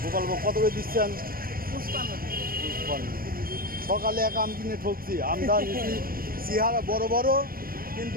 গোপালভোগ। কত করে দিচ্ছেন? সকালে এক আম কিনে ঠকছি, আমটা নিচ্ছি চেহারা বড় বড়,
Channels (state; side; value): late; left; 0.42 ms